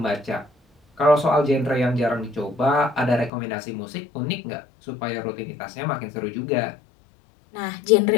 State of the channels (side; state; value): right; drops out; at 3.3 s